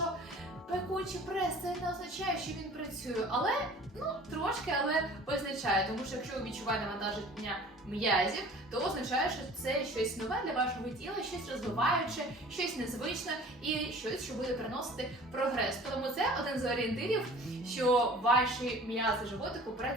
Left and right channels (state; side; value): normal; both; correlation 0.46